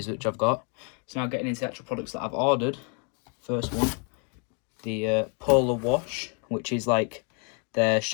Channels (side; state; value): right; quieter; 37.9 dB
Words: which I've got. So now getting into the actual products that I've ordered. First one, the Polar Wash, which is like the